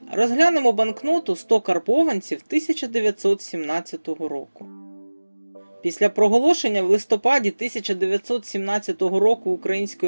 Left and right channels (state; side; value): inverted; both; correlation -1.00